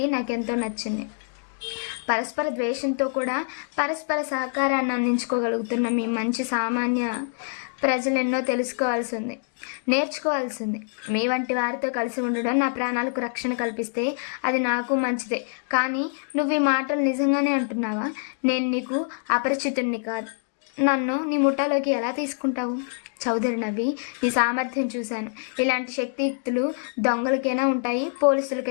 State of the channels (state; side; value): silent; right; digital silence